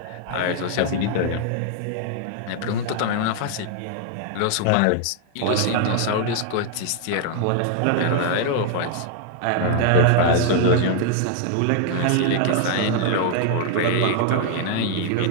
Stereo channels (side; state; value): both; different; correlation -0.01